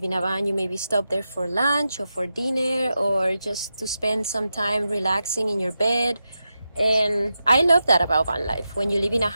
in a van, you maybe stop there for lunch or for dinner or just to spend some time relaxing in your bed. And I love that about van life. When you live in a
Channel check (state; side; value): inverted; both; correlation -0.90